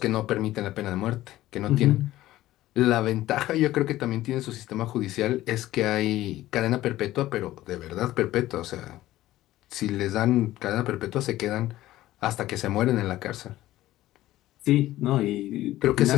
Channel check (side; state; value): right; quieter; 15.3 dB